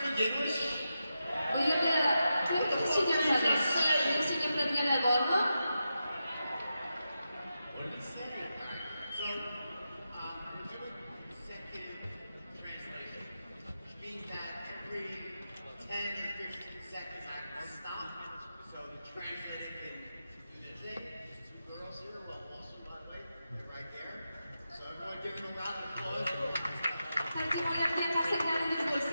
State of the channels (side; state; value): both; inverted; correlation -0.89